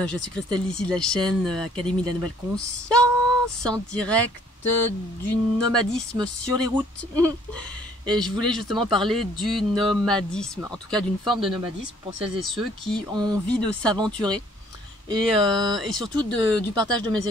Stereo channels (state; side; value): normal; both; correlation 0.61